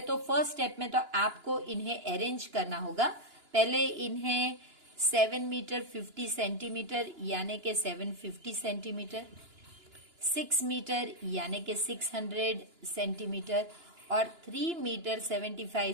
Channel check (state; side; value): late; left; 2.9 ms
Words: तो फर्स्ट स्टेप में तो आपको इन्हें अरेंज करना होगा। पहले इन्हें 7 मीटर 50 सेंटीमीटर यानी कि 750 सेंटीमीटर, 6 मीटर यानी कि 600 सेंटीमीटर और 3 मीटर 75